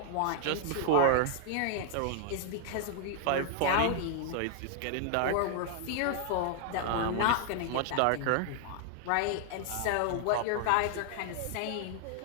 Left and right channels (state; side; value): different; both; correlation 0.00